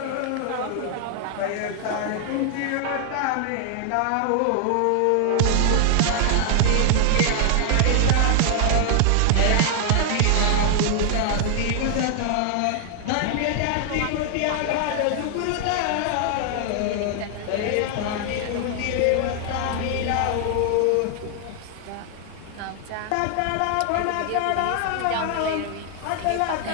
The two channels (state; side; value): different; both; correlation 0.00